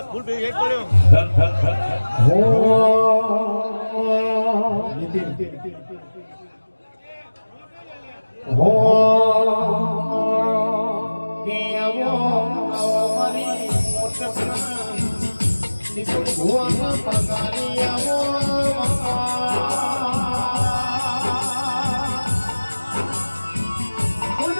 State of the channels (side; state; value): both; inverted; correlation -1.00